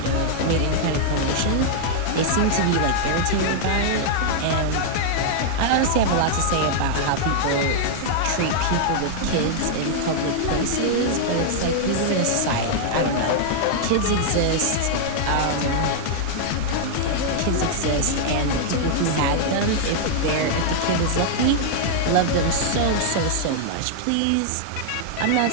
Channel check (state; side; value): different; both; correlation -0.01